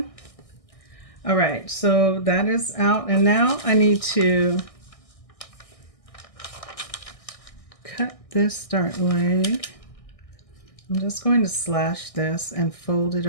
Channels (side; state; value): right; late; 1.6 ms